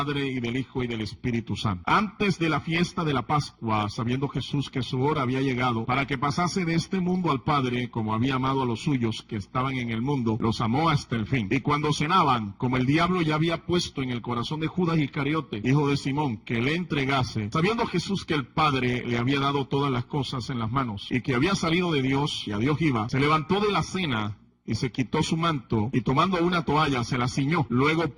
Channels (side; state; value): both; identical; correlation 1.00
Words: y del Hijo, y del Espíritu Santo. Antes de la fiesta de la Pascua, sabiendo Jesús que su hora había llegado, para que pasase de este mundo al Padre, como había amado a los suyos que estaban en el mundo, los amó hasta el fin. Y cuando cenaban, como el diablo ya había puesto en el corazón de Judas Iscariote, hijo de Simón, que le entregase, sabiendo Jesús que el Padre le había dado todas las cosas en las manos, y que había salido de Dios, y a Dios iba, se levantó de la cena, y se quitó su manto, y tomando una toalla se la ciñó. Luego